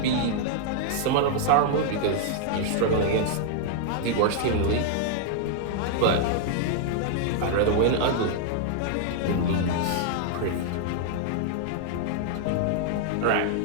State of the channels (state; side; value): different; both; correlation -0.01